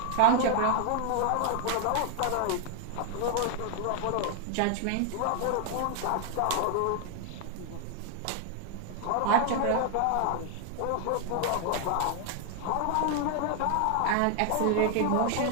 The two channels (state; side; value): different; both; correlation 0.00